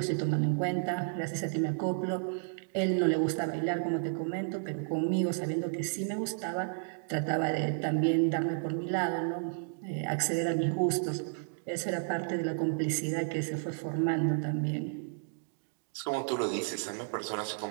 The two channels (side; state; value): left; silent; digital silence